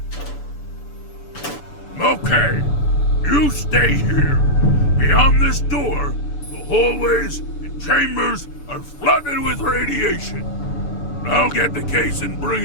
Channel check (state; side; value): late; right; 6.9 ms